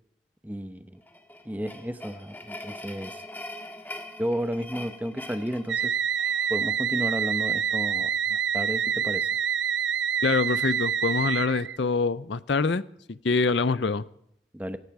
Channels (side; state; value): both; normal; correlation 0.45